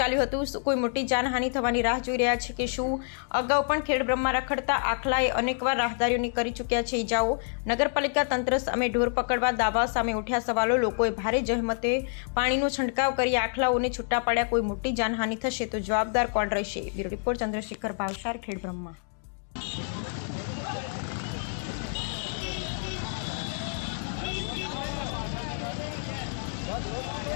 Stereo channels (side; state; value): right; silent; digital silence